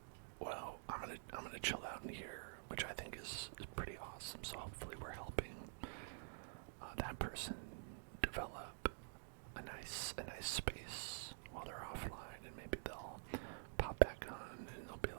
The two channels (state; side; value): silent; left; digital silence